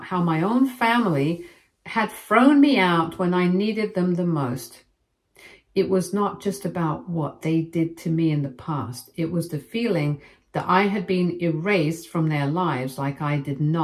how my own family had thrown me out when I needed them the most. It was not just about what they did to me in the past. It was the feeling that I had been erased from their lives, like I did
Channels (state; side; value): identical; both; correlation 1.00